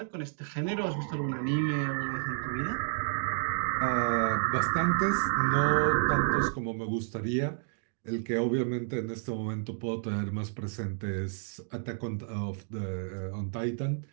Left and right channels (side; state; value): left; silent; digital silence